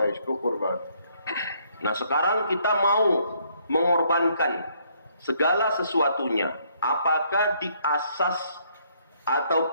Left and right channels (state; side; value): inverted; both; correlation -0.68